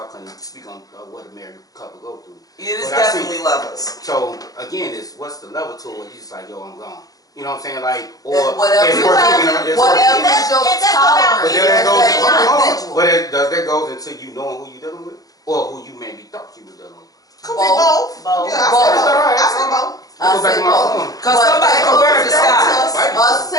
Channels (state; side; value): late; right; 0.18 ms